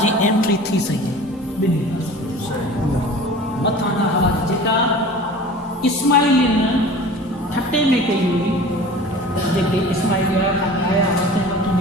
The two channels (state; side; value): normal; both; correlation 0.41